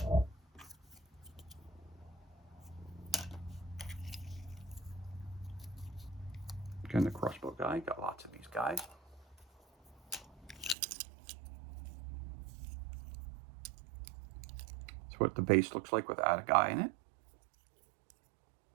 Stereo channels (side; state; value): left; drops out; at 10.8 s